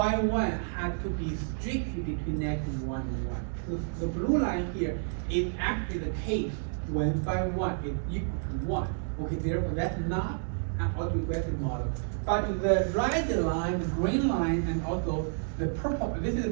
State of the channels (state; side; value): silent; left; digital silence